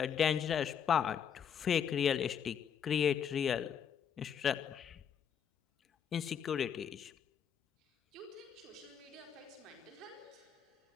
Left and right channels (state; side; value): quieter; right; 8.0 dB